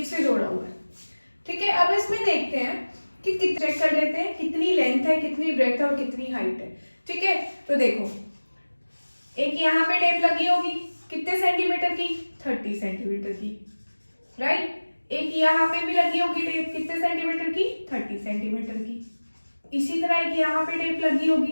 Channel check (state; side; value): inverted; both; correlation -1.00